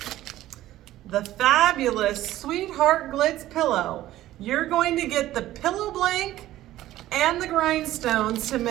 The fabulous Sweetheart Glitz pillow. You're going to get the pillow blank and the grindstones to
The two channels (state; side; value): quieter; left; 14.6 dB